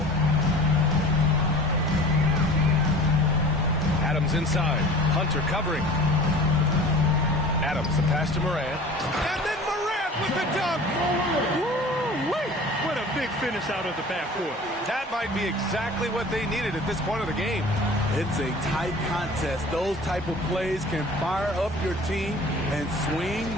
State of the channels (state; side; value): normal; both; correlation 0.42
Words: Adams inside. Hunter covering. Adams, the pass to Morant. And then Morant with the dunk. Woo-wee! What a big finish out of the backcourt. That might be exactly what they needed at this point of the game. It's a tight contest. Those type of plays can fire up your team and swing